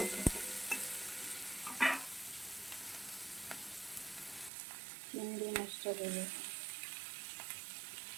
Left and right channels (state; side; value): drops out; left; at 4.5 s